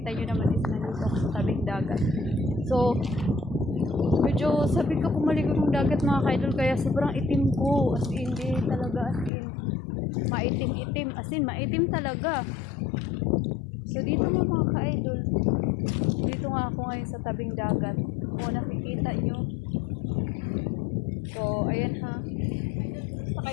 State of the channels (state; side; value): drops out; right; at 9.3 s